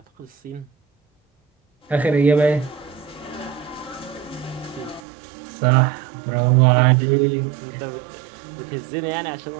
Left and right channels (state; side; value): drops out; left; at 5.0 s